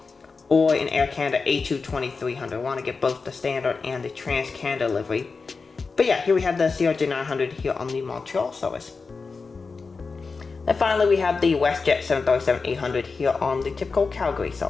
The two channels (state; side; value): quieter; right; 4.5 dB